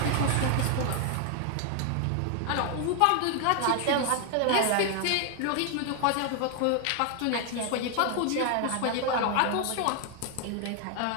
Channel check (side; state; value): both; different; correlation 0.00